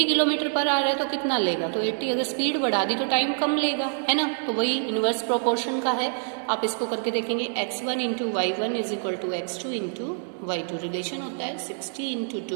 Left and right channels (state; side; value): silent; left; digital silence